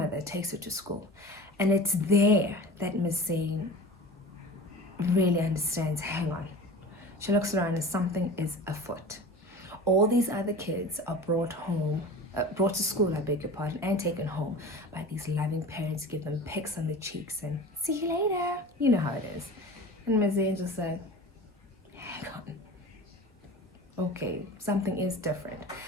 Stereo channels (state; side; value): normal; both; correlation 0.36